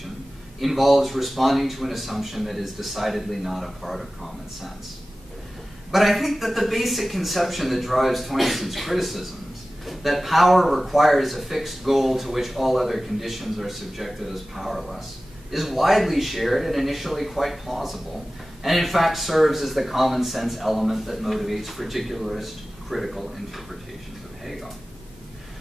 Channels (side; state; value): both; normal; correlation 0.96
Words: involves responding to an assumption that is decidedly not a part of common sense. But I think that the basic conception that drives Theunisson's criticisms, that power requires a fixed goal to which all other conditions are subjected as powerless, is widely shared and initially quite plausible, and in fact serves as the common sense element that motivates particularist critical interpretations of Hegel.